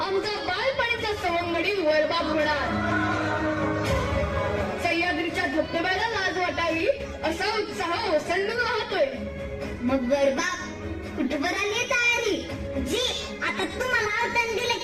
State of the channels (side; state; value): both; identical; correlation 1.00